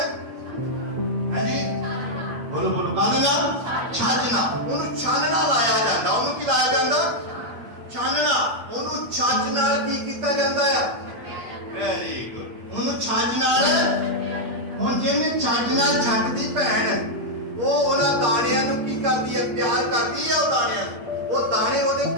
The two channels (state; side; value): late; left; 8.6 ms